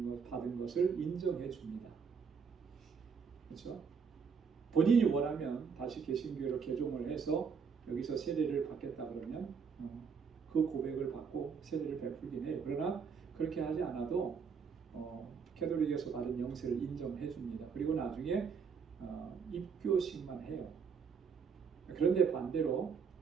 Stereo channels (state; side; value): quieter; left; 6.0 dB